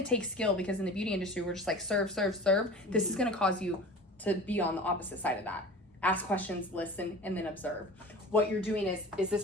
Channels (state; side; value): normal; both; correlation 0.38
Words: to take skill, because in the beauty industry, we're just like serve, serve, serve. This is going to cause you to be on the opposite side of that. Ask questions, listen, and then observe. What you're doing is this